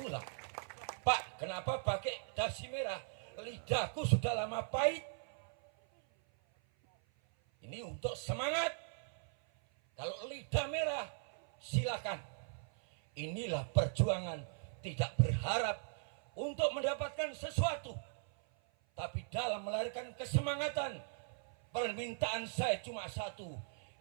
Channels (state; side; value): silent; left; 52 dB below the other